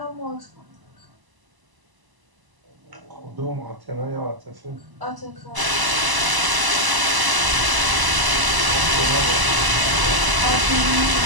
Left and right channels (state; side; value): late; left; 1.0 ms